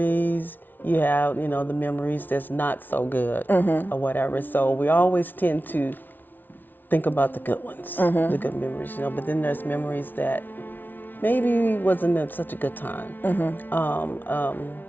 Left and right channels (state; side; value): late; right; 0.089 ms